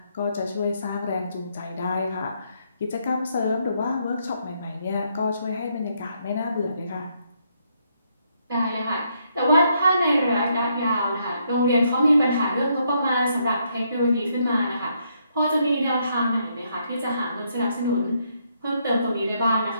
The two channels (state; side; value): inverted; both; correlation -0.74